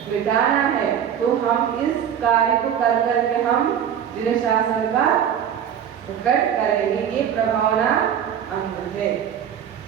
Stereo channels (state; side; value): quieter; left; 9.0 dB